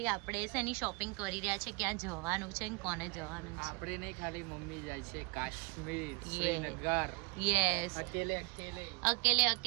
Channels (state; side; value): quieter; left; 27.3 dB